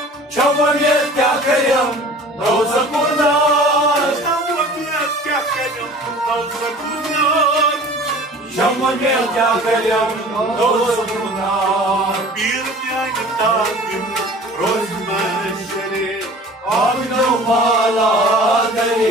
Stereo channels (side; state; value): both; normal; correlation 0.45